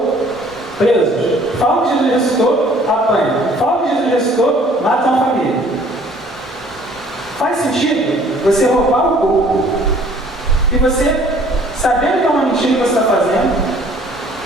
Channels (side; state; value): both; normal; correlation 0.56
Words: presos. Falam que Jesus ressuscitou, apanham. Falam que Jesus ressuscitou, matam a família. Faz sentido você roubar o corpo e você, sabendo que é uma mentira que você está fazendo,